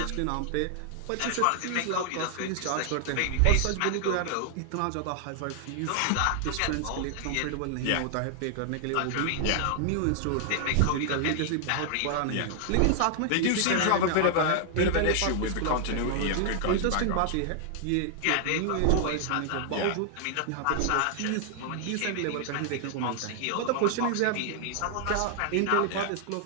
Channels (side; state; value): both; different; correlation 0.00